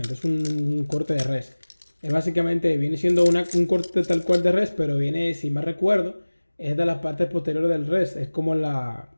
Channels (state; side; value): inverted; both; correlation -1.00